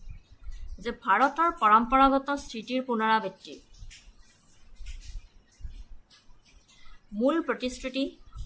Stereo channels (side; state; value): both; identical; correlation 1.00